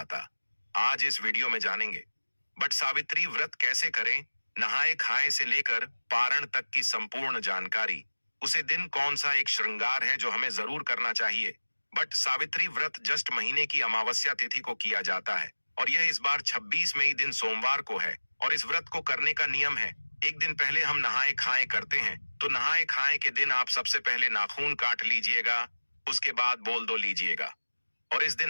आज इस वीडियो में जानेंगे वट सावित्री व्रत कैसे करें, नहाए खाए से लेकर पारण तक की संपूर्ण जानकारी, उसे दिन कौन सा एक श्रृंगार है जो हमें जरूर करना चाहिए। वट सावित्री व्रत ज्येष्ठ महीने की अमावस्या तिथि को किया जाता है, और यह इस बार 26 मई दिन सोमवार को है। और इस व्रत को करने का नियम है, एक दिन पहले हम नहाए खाए करते हैं, तो नहाए खाए के दिन आप सबसे पहले नाखून काट लीजिएगा, उसके बाद बोल दो लीजिएगा। और इस दिन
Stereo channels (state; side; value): inverted; both; correlation -1.00